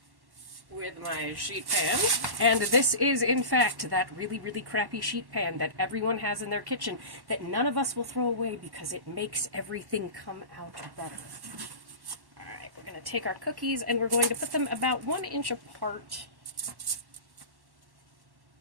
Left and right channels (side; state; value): left; late; 1.1 ms